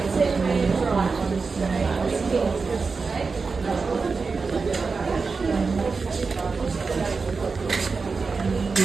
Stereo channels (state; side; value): quieter; left; 4.6 dB